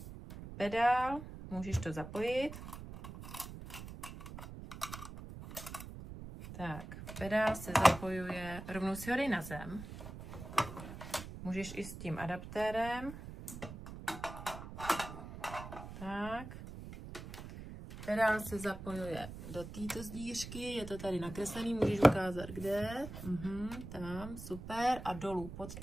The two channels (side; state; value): right; noise; rumble, 11 dB below the sound